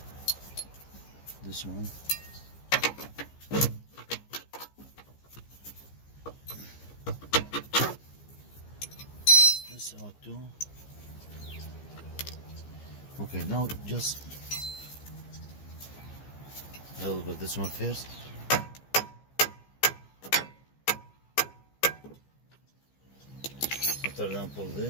this one, this out too. Okay, now just I will put this one first. After that, pull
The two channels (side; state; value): right; late; 15 ms